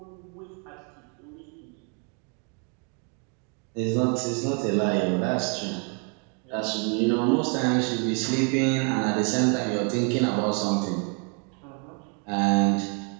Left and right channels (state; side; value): quieter; left; 38.4 dB